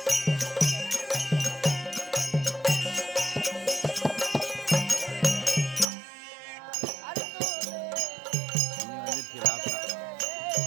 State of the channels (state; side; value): drops out; left; at 5.9 s